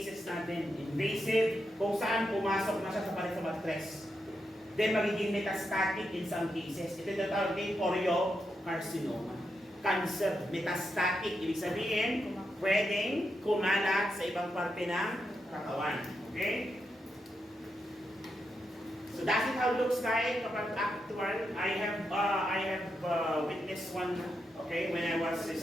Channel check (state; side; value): normal; both; correlation 0.84